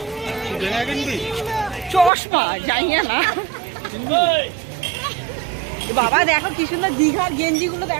চশমা যাই না বাবা, দেখো কি সুন্দর দীঘার গেঞ্জি গুলো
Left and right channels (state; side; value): drops out; left; at 2.1 s